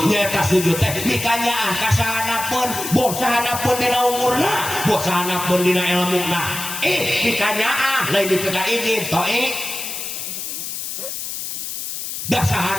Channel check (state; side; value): noise; left; hiss, 6 dB below the sound